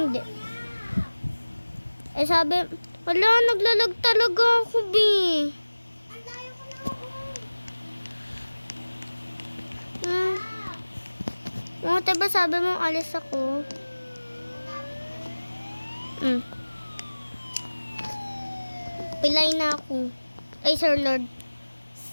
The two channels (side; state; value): both; inverted; correlation -1.00